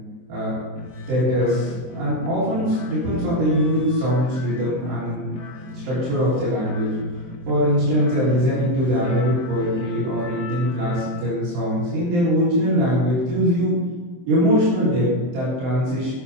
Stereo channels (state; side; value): late; left; 23 ms